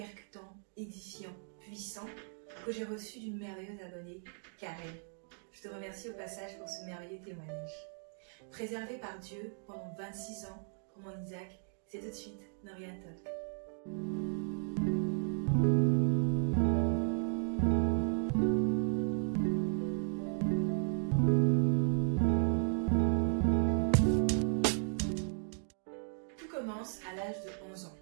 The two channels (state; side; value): silent; left; 54 dB below the other